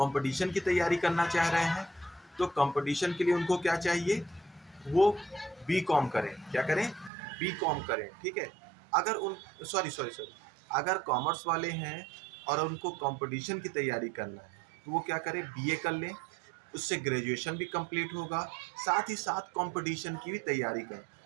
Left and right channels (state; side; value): drops out; left; at 7.1 s